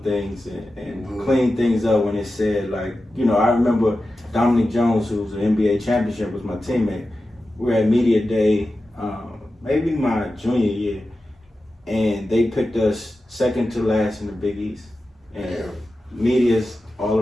things and clean things up when it said, like, you know, I remember Dominic Jones, who was an NBA championship, was my teammate. We were at media day, maybe my junior year, and they picked us second to last in the Big East. And media's all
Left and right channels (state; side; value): normal; both; correlation 0.93